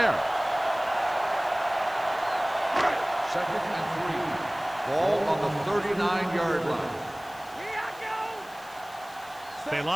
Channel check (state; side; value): noise; left; hiss, 22 dB below the sound